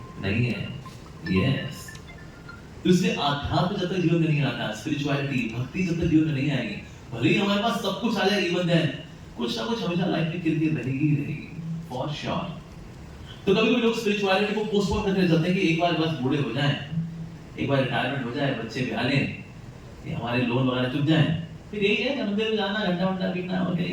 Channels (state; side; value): identical; both; correlation 1.00